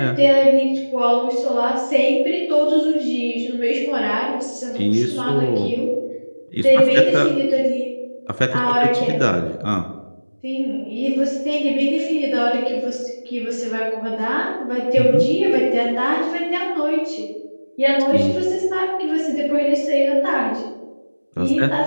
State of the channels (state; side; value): inverted; both; correlation -1.00